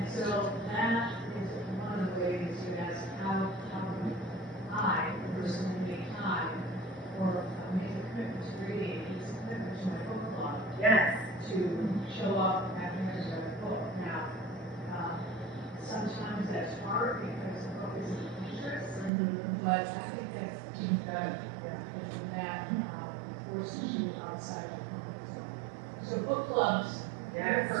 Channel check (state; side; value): drops out; left; at 19.1 s